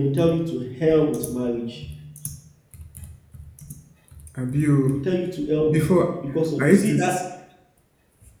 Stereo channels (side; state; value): both; identical; correlation 1.00